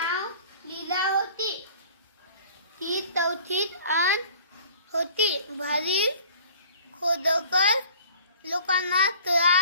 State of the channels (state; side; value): inverted; both; correlation -0.49